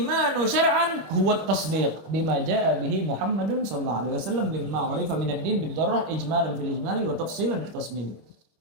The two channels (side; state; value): left; late; 25 ms